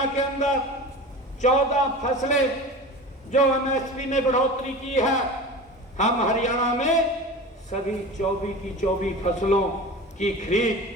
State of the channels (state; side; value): normal; both; correlation 0.33